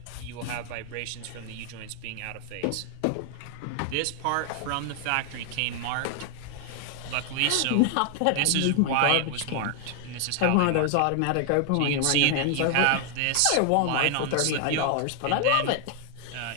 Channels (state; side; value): different; both; correlation 0.00